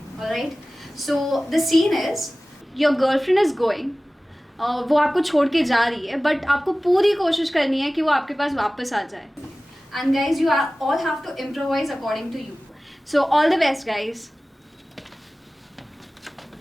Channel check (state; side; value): normal; both; correlation 0.97